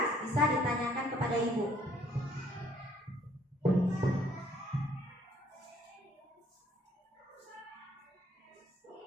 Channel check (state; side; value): normal; both; correlation 0.62